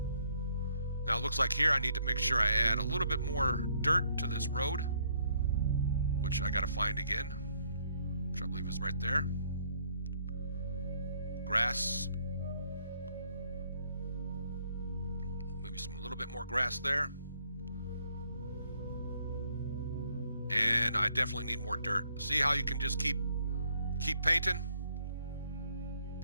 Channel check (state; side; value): inverted; both; correlation -0.68